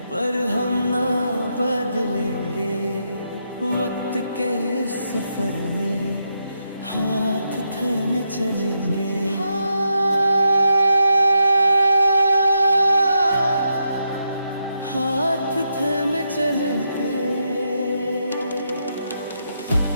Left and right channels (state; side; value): inverted; both; correlation -0.82